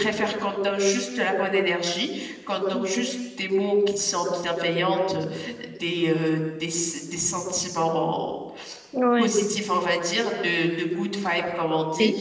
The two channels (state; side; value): identical; both; correlation 1.00